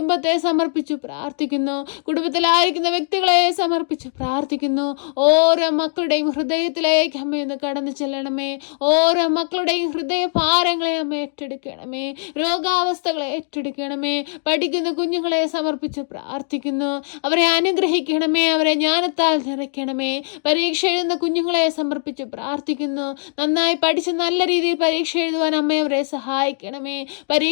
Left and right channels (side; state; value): right; silent; digital silence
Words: സമർപ്പിച്ചു പ്രാർത്ഥിക്കുന്നു. കുടുംബത്തിലായിരിക്കുന്ന വ്യക്തികളെ സമർപ്പിച്ചു പ്രാർത്ഥിക്കുന്നു. ഓരോ മക്കളുടെയും ഹൃദയത്തിലേക്ക് അമ്മയൊന്ന് കടന്നു ചെല്ലണമേ. ഓരോ മക്കളുടെയും ഹൃദയ ഭാരങ്ങളെ അമ്മ ഏറ്റെടുക്കണമേ. രോഗാവസ്ഥകളെ ഏറ്റെടുക്കണമേ. പഠിക്കുന്ന കുഞ്ഞുങ്ങളെ സമർപ്പിച്ച് പ്രാർത്ഥിക്കുന്നു. അവരെ അനുഗ്രഹിക്കണമേ. അവരെ ജ്ഞാനത്താൽ നിറയ്ക്കണമേ. പരീക്ഷ എഴുതുന്ന കുഞ്ഞുങ്ങളെ സമർപ്പിച്ച് പ്രാർത്ഥിക്കുന്നു. നന്നായി പഠിച്ച് നല്ല രീതിയിൽ പരീക്ഷ എഴുതുവാൻ അമ്മ അവരെ സഹായിക്കണമേ.